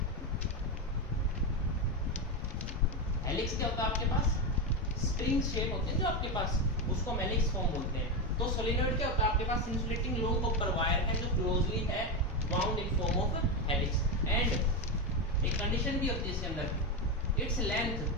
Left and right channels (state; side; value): normal; both; correlation 0.12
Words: हेलिक्स क्या होता है आपके पास? स्प्रिंग शेप होते हैं जो आपके पास, उसको हम हेलिक्स फॉर्म बोलते हैं। तो सोलिनॉइड क्या होता है? आपके पास इंसुलेटिंग लॉन्ग कॉपर वायर है जो क्लोजली है bound in form of helix. And एक कंडीशन भी होती है इसके अंदर, its length